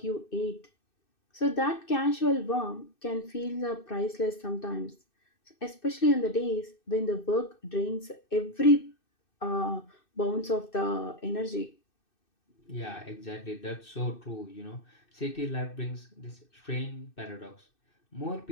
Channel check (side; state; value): right; late; 2.6 ms